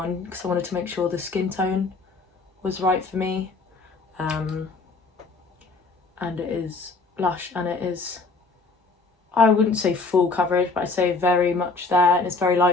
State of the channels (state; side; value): quieter; right; 3.8 dB